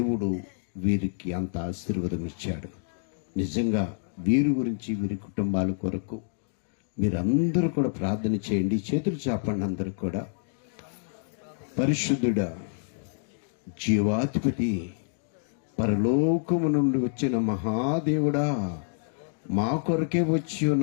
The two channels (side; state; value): right; silent; digital silence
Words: వీరికి అంత ఆశీర్వాదం ఇచ్చాడు. నిజంగా వీరి గురించి, వీరి కుటుంబాల కొరకు మీరందరూ కూడా ప్రార్థన చేయండి. చేతులు చాపండి అందరూ కూడా. పరిశుద్ధుడా, జీవాధిపతి, పరలోకము నుండి వచ్చిన మహాదేవుడా, మా కొరకే వచ్చి